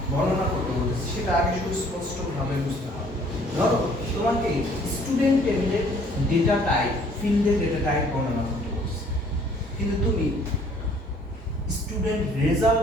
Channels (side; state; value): both; normal; correlation 0.58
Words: বর্ণনা করতে বলতেছে সেটা আগে সুস্পষ্টভাবে বুঝতে হবে। ধরো তোমাকে স্টুডেন্ট টেবিলের ডেটা টাইপ ফিল্ডের ডেটা টাইপ বর্ণনা করতে বলছে, কিন্তু তুমি স্টুডেন্ট রেজাল্ট